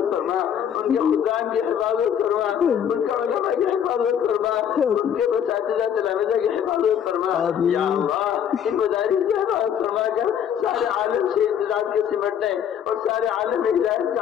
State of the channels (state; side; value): quieter; right; 8.9 dB